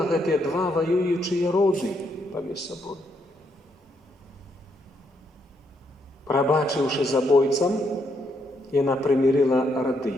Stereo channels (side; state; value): both; normal; correlation 0.76